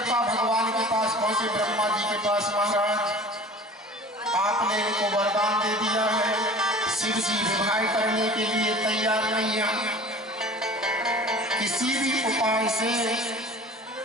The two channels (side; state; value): both; normal; correlation 0.41